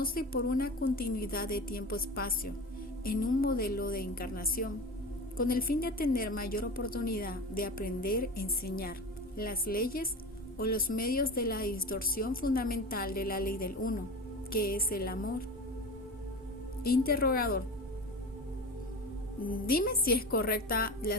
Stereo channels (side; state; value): both; normal; correlation 0.31